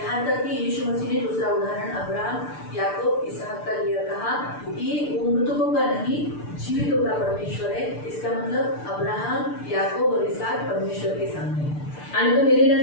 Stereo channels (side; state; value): right; late; 6.8 ms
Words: तक कि यीशु मसीह ने दूसरा उदाहरण अब्राहम याकूब इसहाक का लिया, कहा कि वो मृतकों का नहीं जीवितों का परमेश्वर है। इसका मतलब अब्राहम याकूब और इसहाक परमेश्वर के सामने है। आणि तो